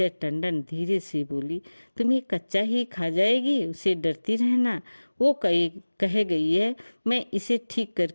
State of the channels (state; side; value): inverted; both; correlation -1.00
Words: टंडन धीरे से बोली, तुम्हें कच्चा ही खा जाएगी, उसे डरती रहना। वो कह गई है मैं इसे ठीक